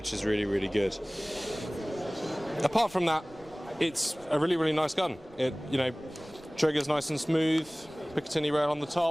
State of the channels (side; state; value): right; noise; rumble, 27 dB below the sound